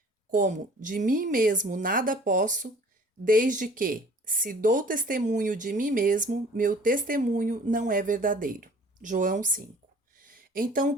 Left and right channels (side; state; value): both; normal; correlation 0.51